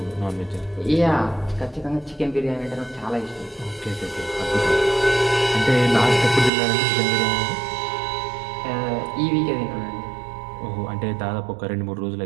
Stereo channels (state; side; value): drops out; left; at 6.5 s